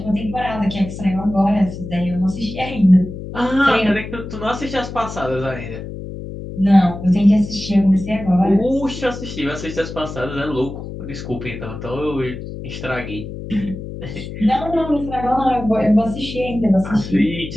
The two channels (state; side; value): noise; left; hum, 9 dB below the sound